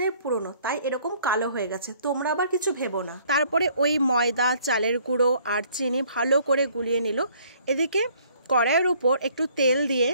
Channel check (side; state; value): both; inverted; correlation -0.60